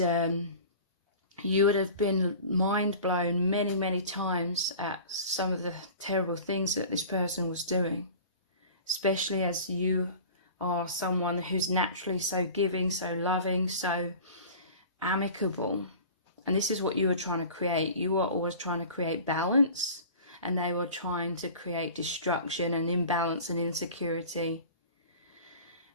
you would have been mind blown many, many times at some of the terrible things that this person was doing, especially as you are someone who's naturally so giving, so loving, so amicable. And this is what you were trying to create. You were always trying to create balance, and they were trying to create destruction and imbalance and insecurity.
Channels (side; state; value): both; inverted; correlation -0.40